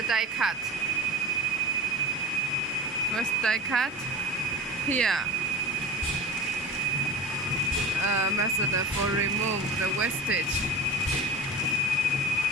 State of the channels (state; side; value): normal; both; correlation 0.33